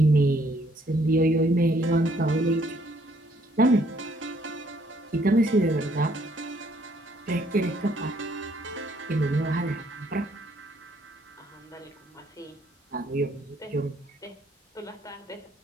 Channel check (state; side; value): normal; both; correlation 0.66